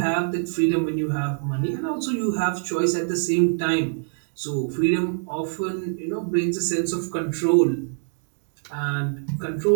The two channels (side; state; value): left; silent; digital silence